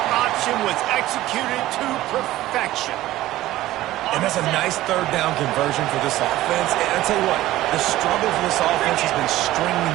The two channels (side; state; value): left; quieter; 15.7 dB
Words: option was executed to perfection. And that's a nice third down conversion for this offense. And I'll tell you what, the struggle for this offense has been stringing